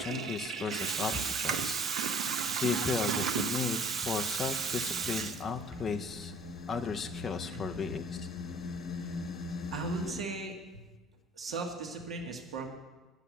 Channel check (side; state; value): both; normal; correlation 0.51